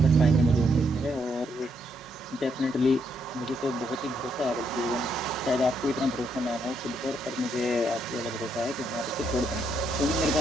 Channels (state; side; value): normal; both; correlation 0.75